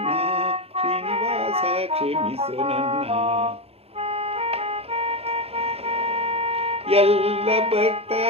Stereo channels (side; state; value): left; late; 0.29 ms